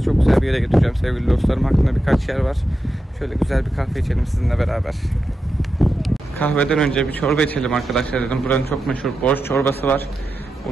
çok güzel bir yere götüreceğim sevgili dostlarım. Aklımda birkaç yer var. Şöyle güzel bir kahve içelim sizinle beraber. Kahveden önce bir çorba içelim arkadaşlar dedim. Buranın çok meşhur borş çorbası var.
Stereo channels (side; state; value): both; normal; correlation 0.89